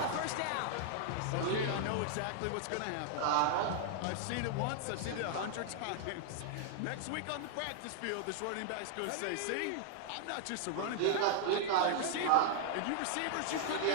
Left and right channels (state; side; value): different; both; correlation -0.01